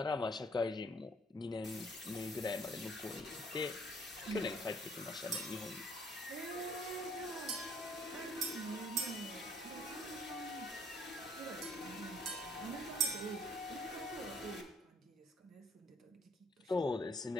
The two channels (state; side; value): normal; both; correlation 0.63